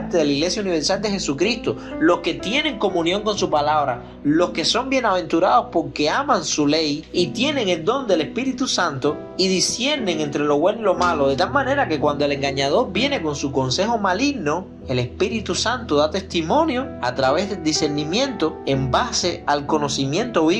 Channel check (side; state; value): both; identical; correlation 1.00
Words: de la Iglesia Universal de Jesucristo, los que tienen comunión con su palabra, los que son bienaventurados porque aman su ley y tienen el don del Espíritu Santo y disciernen entre lo bueno y lo malo, de tal manera que cuando el engañador viene con su consejo maligno, el Espíritu Santo da testimonio a través del discernimiento en base al conocimiento